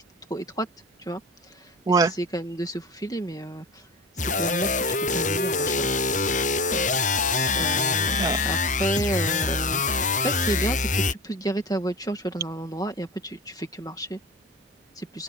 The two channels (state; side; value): normal; both; correlation 0.31